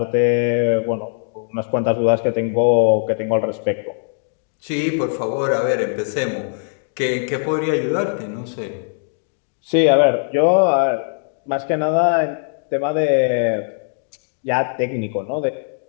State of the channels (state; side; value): silent; right; digital silence